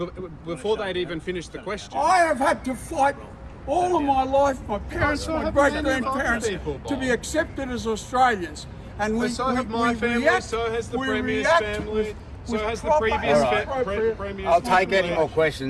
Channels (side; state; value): both; identical; correlation 1.00